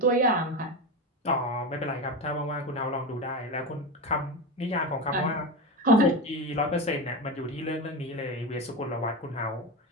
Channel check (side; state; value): both; normal; correlation 0.20